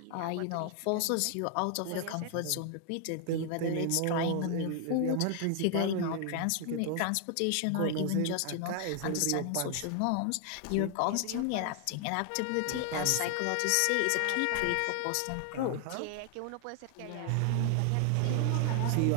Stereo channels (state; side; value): different; both; correlation 0.00